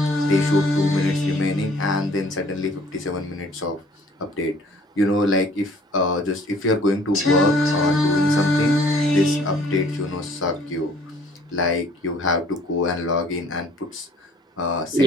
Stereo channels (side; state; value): both; normal; correlation 0.56